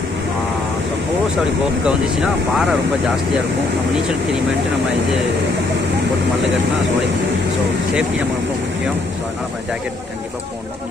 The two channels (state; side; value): quieter; right; 3.2 dB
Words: சப்போஸ் அப்படி போக்க வந்துச்சுன்னா பாறை ரொம்ப ஜாஸ்தியாக இருக்கும். நம்ம நீச்சல் தெரியுமேன்ட்டு நம்ம இது போட்டு மல்ல கட்டினா சோழி. ஸோ சேஃப்டி நம்ம ரொம்ப முக்கியம். ஸோ அதனால் நம்ம ஜாக்கெட் கண்டிப்பாக போடணும்.